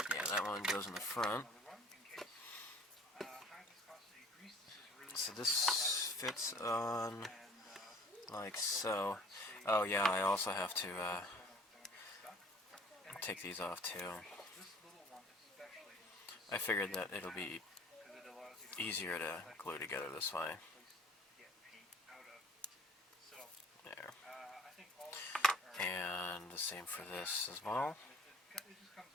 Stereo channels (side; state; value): both; normal; correlation 0.50